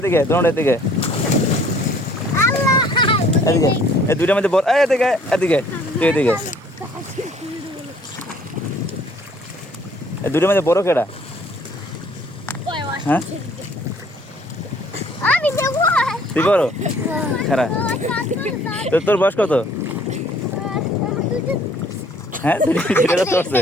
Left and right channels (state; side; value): normal; both; correlation 0.58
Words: দৌড় এদিকে এদিকে এই দুইটার মধ্যে বল। এদিকে এদিকে তুই এদিকে, এই দুইটার মধ্যে বড় কেডা? হ্যাঁ তুই বড়? খারাপ। তোর বয়স কত? হ্যাঁ চলছে।